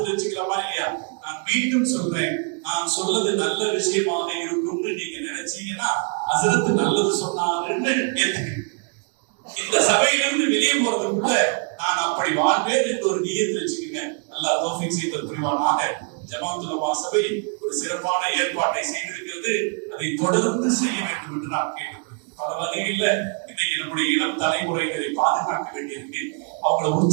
வச்சுக்கலாமா இல்லையா? நான் மீண்டும் சொல்றேன், நான் சொல்றது நல்ல விஷயமாக இருக்கும்னு நீங்க நினைச்சீங்கன்னா ஹஸரத் நல்லது சொன்னாருன்னு ஏத்துக்கங்க. இந்த சபையிலிருந்து வெளியே போறதுக்குள்ள நான் அப்படி வாழ்வேன் என்று ஒரு நியத்து வச்சுக்கோங்க. அல்லாஹ் தௌஃபீக் செய்து புரிவானாக. ஜமாஅத்துல் உலமா சபை ஒரு சிறப்பான ஏற்பாட்டை செய்திருக்கிறது. அதை தொடர்ந்து செய்ய வேண்டும் என்று நான் கேட்டுக்கொள்கிறேன். பல வகையில் இன்னைக்கு நம்முடைய இளம் தலைமுறையினரை பாதுகாக்க வேண்டியிருக்கு, அவங்களை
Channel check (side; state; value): left; quieter; 37.8 dB